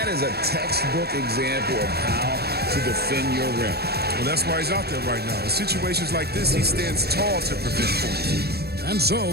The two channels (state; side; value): late; left; 0.46 ms